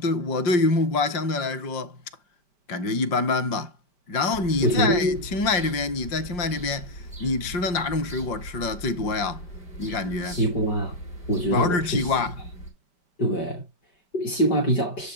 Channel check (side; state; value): right; late; 5.1 ms